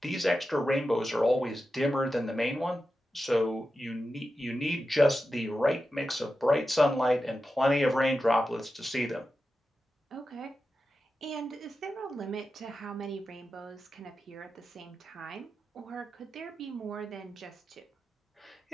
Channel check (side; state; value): both; normal; correlation 0.91